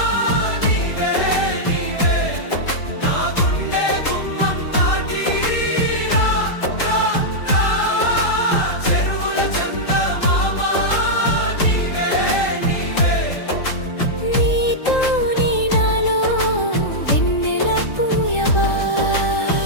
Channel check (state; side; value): late; right; 3.8 ms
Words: నీవే నీవే, నా గుండె గుమ్మం దాటి రా రా రా. చెరువుల చందమామ నీవే నీవే, నీతోనే నాలో వెన్నెల పూయవా.